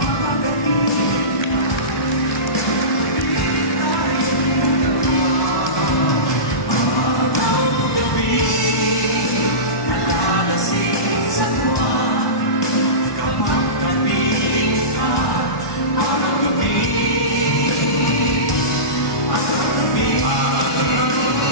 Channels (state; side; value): late; right; 1.2 ms